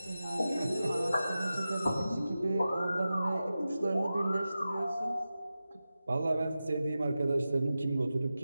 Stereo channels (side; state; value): both; inverted; correlation -0.93